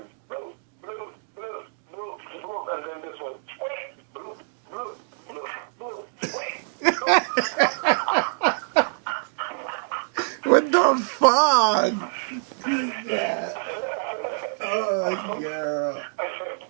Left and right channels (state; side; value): silent; left; digital silence